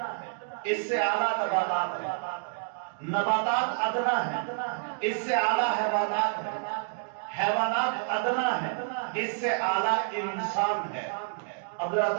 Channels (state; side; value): silent; left; digital silence